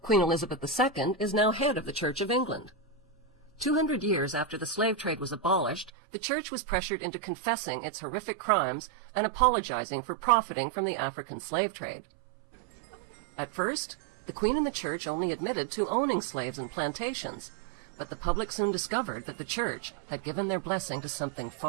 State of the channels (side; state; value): left; drops out; at 5.9 s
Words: Queen Elizabeth II is now head of the Church of England. 200 years after the slave trade was abolished, the Church was pressured into confessing its horrific crimes and apologizing for profiting from the African slave trade. At first, the Queen and the Church only admitted to owning slaves and plantations, but the public soon discovered that the Church had given their blessing to something